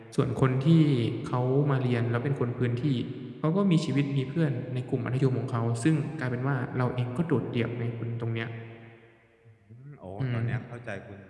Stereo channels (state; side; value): identical; both; correlation 1.00